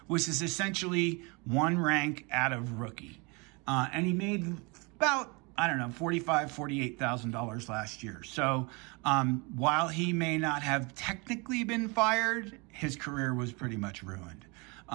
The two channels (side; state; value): left; quieter; 29.1 dB